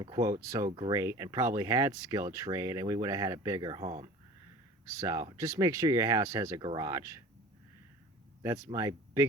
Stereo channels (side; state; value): both; normal; correlation 0.41